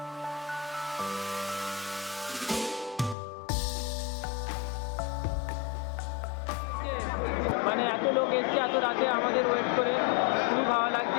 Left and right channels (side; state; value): right; drops out; at 3.2 s